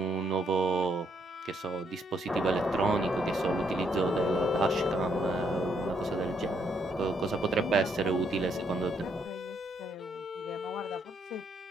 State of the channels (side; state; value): both; normal; correlation 0.73